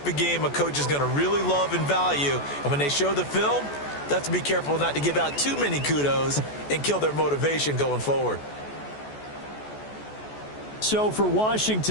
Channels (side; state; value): right; late; 14 ms